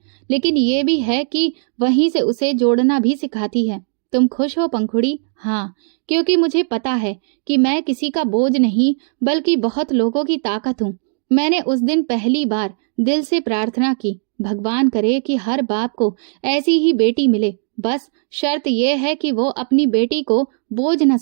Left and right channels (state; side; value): silent; left; 60 dB below the other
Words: लेकिन ये भी है कि वहीं से उसे जोड़ना भी सिखाती है। तुम खुश हो पंखुड़ी? हाँ, क्योंकि मुझे पता है कि मैं किसी का बोझ नहीं बल्कि बहुत लोगों की ताकत हूँ। मैंने उस दिन पहली बार दिल से प्रार्थना की, भगवान करे कि हर बाप को ऐसी ही बेटी मिले। बस शर्त यह है कि वो अपनी बेटी को बोझ न